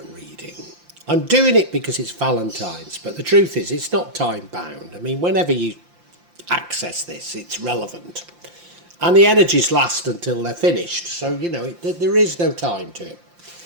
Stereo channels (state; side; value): late; left; 5.8 ms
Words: reading. I'm doing it because it's Valentine's, but the truth is it's not time bound. I mean, whenever you access this, it's relevant. And the energies last until they're finished, so you know, there is no time to it.